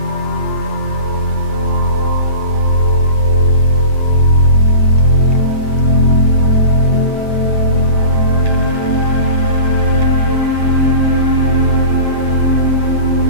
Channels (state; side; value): late; right; 8.6 ms